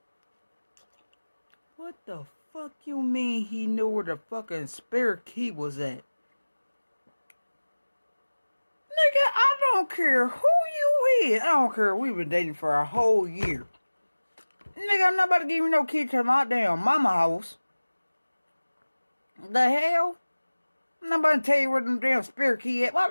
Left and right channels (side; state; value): both; inverted; correlation -1.00